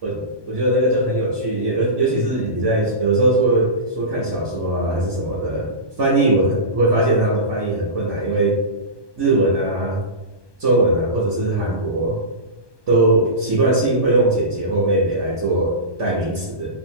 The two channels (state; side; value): late; left; 1.2 ms